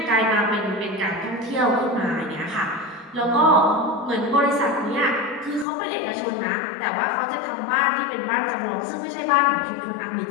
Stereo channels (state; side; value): drops out; right; at 5.7 s